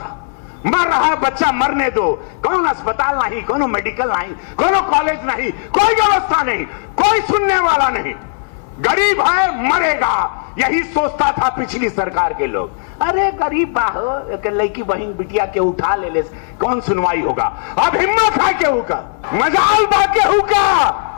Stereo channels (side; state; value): right; silent; 69 dB below the other